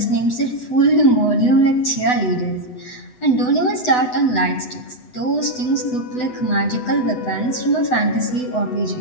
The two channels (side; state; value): right; late; 8.0 ms